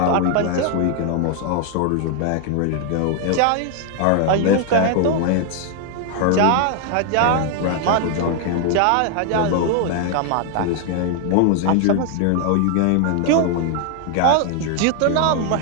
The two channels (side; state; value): both; different; correlation 0.00